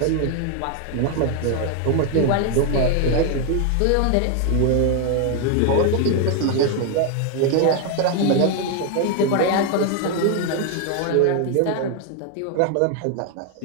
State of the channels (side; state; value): both; different; correlation 0.01